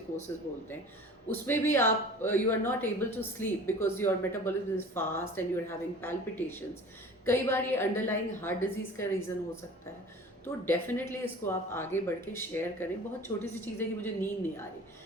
बोलते हैं। उसमें भी आप you are not able to sleep because your metabolism is fast and you are having palpitations. कई बार ये अंडरलाइंग हार्ट डिजीज़ का रीज़न हो सकता है। तो डेफिनेटली इसको आप आगे बढ़ के शेयर करें. बहुत छोटी सी चीज़ है कि मुझे नींद नहीं आ रही,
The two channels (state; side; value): normal; both; correlation 0.42